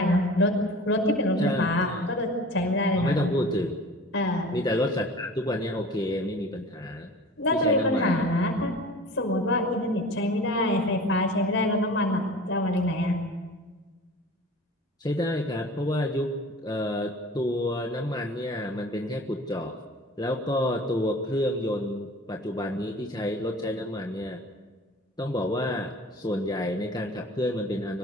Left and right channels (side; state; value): both; normal; correlation 0.41